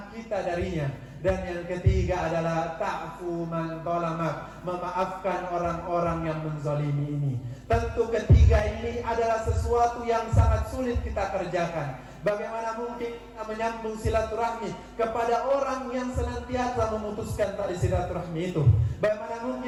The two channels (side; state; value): both; identical; correlation 1.00